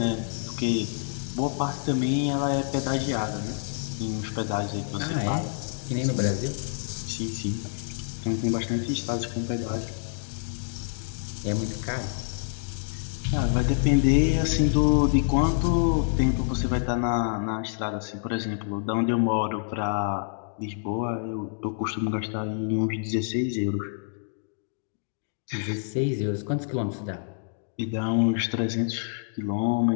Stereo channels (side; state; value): right; silent; digital silence